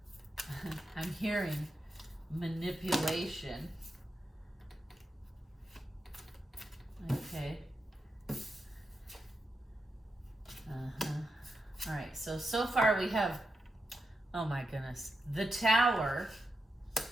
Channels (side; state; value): both; normal; correlation 0.87